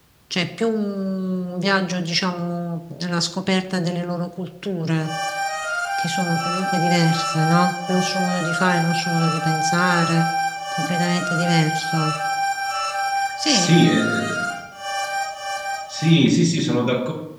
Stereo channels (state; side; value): identical; both; correlation 1.00